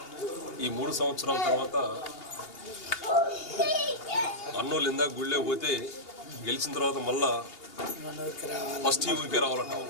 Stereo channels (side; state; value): right; late; 2.8 ms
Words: ఈ 3 సంవత్సరాల తర్వాత అన్నోళ్ళు ఇందాక గుళ్ళే పోతే గెలిచిన తర్వాత మళ్ళా ఫస్ట్ ఈ ఊరికే రావాలంటాం.